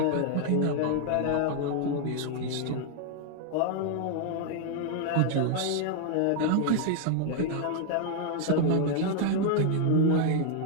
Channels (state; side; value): different; both; correlation 0.00